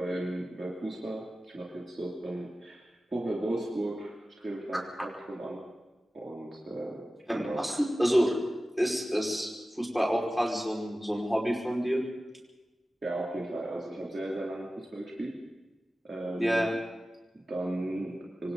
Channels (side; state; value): both; normal; correlation 0.95